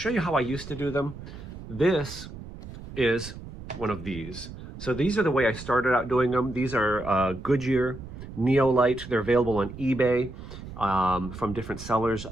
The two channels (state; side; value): noise; right; rumble, 12 dB below the sound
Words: you how I used to do them. This is one of these. So these are the way I started out doing them. These are Goodyear Neolite. They're available on eBay. From different sellers.